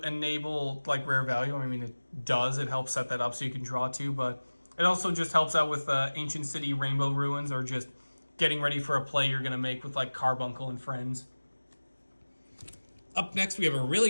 enable like rare value. I mean, it does. It helps set that up so you can draw 2, but it also just helps out with Ancient City Rainbow Ruins, or just getting ready for a play you're going to make with like Carbuncle and friends. Up next, we have a really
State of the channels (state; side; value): inverted; both; correlation -1.00